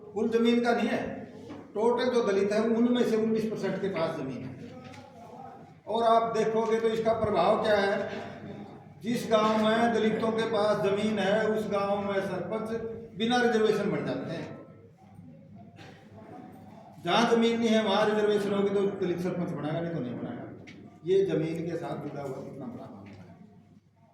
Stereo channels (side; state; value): both; identical; correlation 1.00